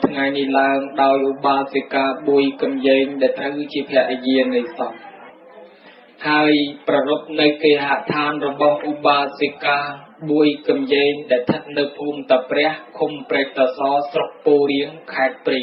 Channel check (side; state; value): both; identical; correlation 1.00